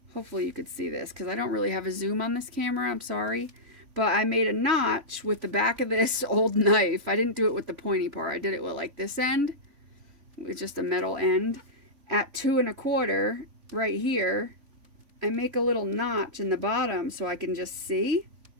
Hopefully you could see this, because I don't really have a zoom on this camera. I'm sorry. But I made a notch with the back of this old knife. I didn't do it with the pointy part. I did it with like this end, with just a metal end. At 2 1/4 right here, I make a little notch in the bottom so I can just see.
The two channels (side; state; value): left; late; 3.5 ms